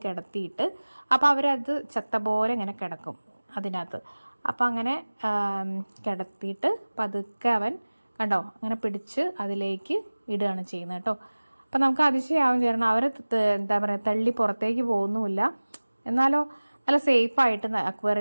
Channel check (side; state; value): both; inverted; correlation -1.00